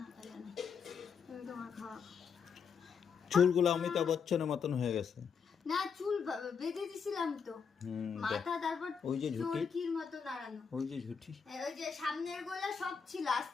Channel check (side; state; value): right; quieter; 6.3 dB